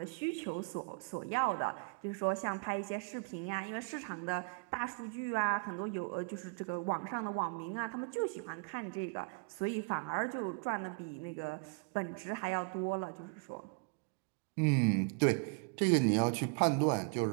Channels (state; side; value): quieter; left; 34.0 dB